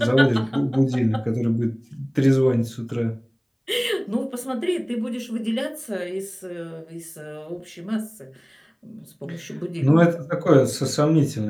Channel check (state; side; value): identical; both; correlation 1.00